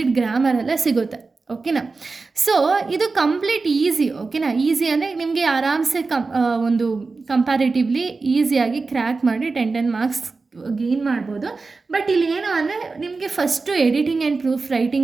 ಗ್ರಾಮರೆಲ್ಲ ಸಿಗುತ್ತೆ. ಓಕೆನಾ? ಸೊ ಇದು ಕಂಪ್ಲೀಟ್ ಈಸಿ. ಓಕೆನಾ? ಈಸಿ ಅಂದರೆ ನಿಮಗೆ ಆರಾಮ್ಸೆ ಒಂದು ಕಂಪ್ಯಾರಿಟಿವ್ಲಿ ಈಸಿಯಾಗಿ ಕ್ರ್ಯಾಕ್ ಮಾಡಿ 10 ಮಾರ್ಕ್ಸ್ ಗೇನ್ ಮಾಡ್ಬೋದು. ಬಟ್ ಇಲ್ಲಿ ಏನು ಅಂದರೆ ನಿಮಗೆ first editing and proof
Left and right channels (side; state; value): left; quieter; 4.0 dB